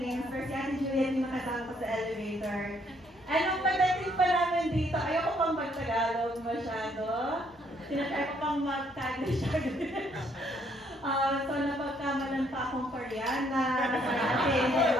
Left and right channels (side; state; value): both; normal; correlation 0.68